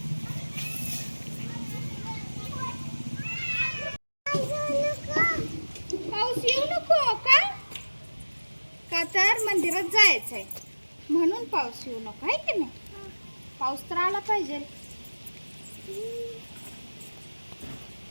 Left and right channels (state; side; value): inverted; both; correlation -1.00